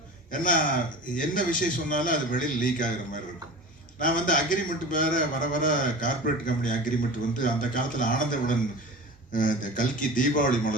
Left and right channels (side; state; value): both; normal; correlation 0.35